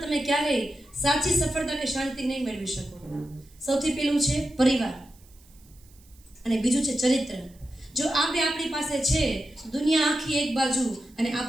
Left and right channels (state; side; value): noise; right; hiss, 28 dB below the sound